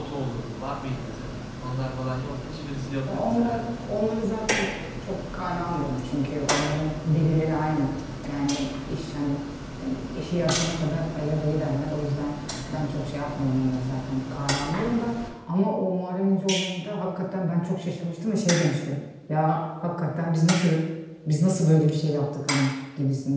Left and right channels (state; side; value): identical; both; correlation 1.00